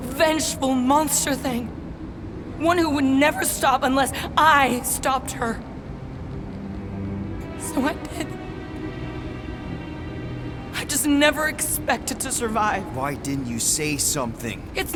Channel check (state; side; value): identical; both; correlation 1.00